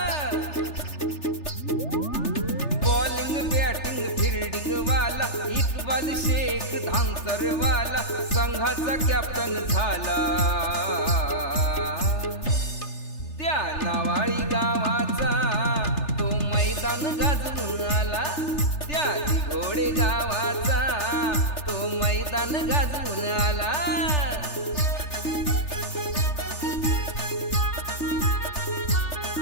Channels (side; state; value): right; late; 3.3 ms